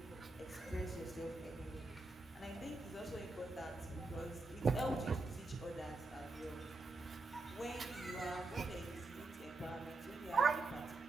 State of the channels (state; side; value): quieter; left; 3.3 dB